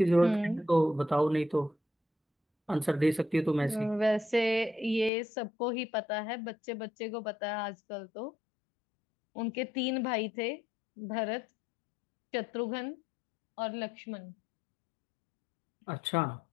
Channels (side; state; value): right; drops out; at 5.1 s